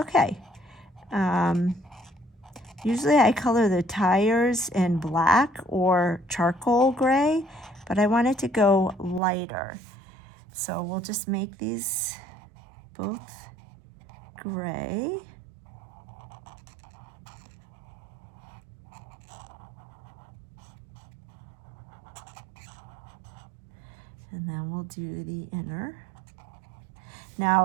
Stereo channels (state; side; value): drops out; left; at 9.2 s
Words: Usually I color the tires in black or charcoal gray, but I want it to go lighter. So we'll just make these both gray. And then we'll do the inner. Now